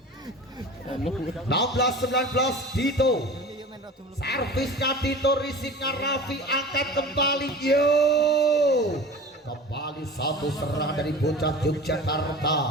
Dito. Servisnya Dito, risipnya Raffi, angkat kembali. Kembali satu serangan dari bocah Yogyakarta,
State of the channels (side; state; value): both; normal; correlation 0.37